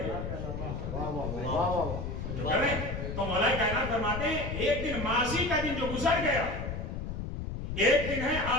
جو کریں تو مولا کائنات فرماتے ہیں ایک دن ماضی کا دن جو گزر گیا، ایک دن ہے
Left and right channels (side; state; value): left; noise; rumble, 5 dB below the sound